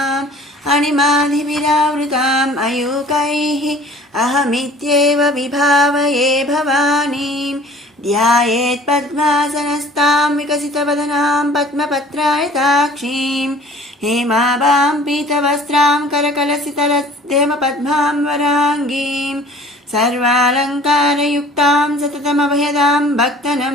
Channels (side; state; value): both; normal; correlation 0.49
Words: अणिमाधिविरावृताम् अयूकैः अहमित्येव विभावये भवानीं ध्यायेत् पद्मासनस्तां विकसितवदनां पद्मपत्रायताक्षीं हेमाभां पीतवस्त्रां करकलसितरदेवपद्मां वराङ्गीं सर्वालङ्कारयुक्तां सततमभयदां